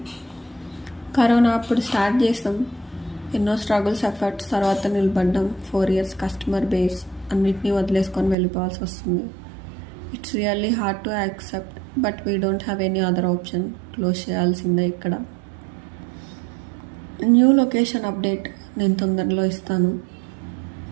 కరోనా అప్పుడు స్టార్ట్ చేస్తాం, ఎన్నో స్ట్రగుల్స్ ఎఫర్ట్స్ తర్వాత నిలబడ్డాం. 4 years కస్టమర్ బేస్ అన్నిటినీ వదిలేసుకొని వెళ్ళిపోవాల్సి వస్తుంది. It's really hard to accept, but we don't have any other option. Close చేయాల్సిందే. ఇక్కడ న్యూ లొకేషన్ అప్డేట్ నేను తొందరలో ఇస్తాను.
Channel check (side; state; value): left; drops out; at 8.3 s